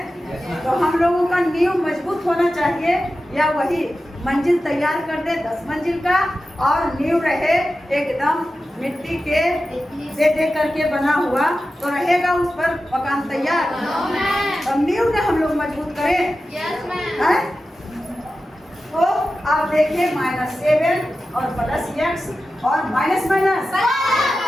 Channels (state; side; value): normal; both; correlation 0.93